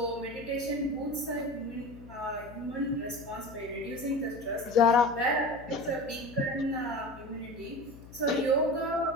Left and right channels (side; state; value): left; noise; hum, 18 dB below the sound